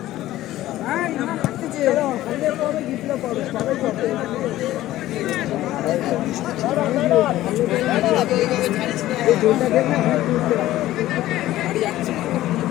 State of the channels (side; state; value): right; quieter; 15.0 dB